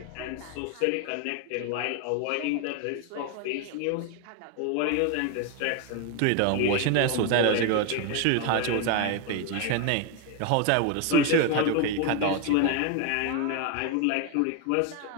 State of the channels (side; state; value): both; different; correlation 0.01